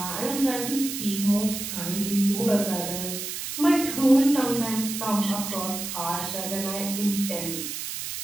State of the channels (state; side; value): noise; right; hiss, 6 dB below the sound